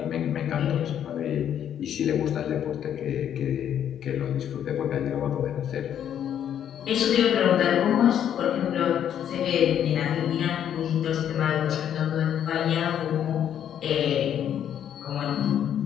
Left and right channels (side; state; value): right; quieter; 9.7 dB